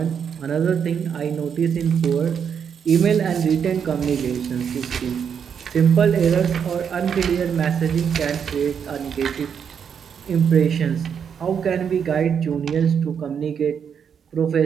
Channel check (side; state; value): left; quieter; 7.4 dB